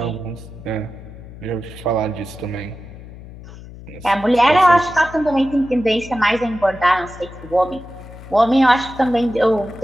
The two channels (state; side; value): noise; left; hum, 16 dB below the sound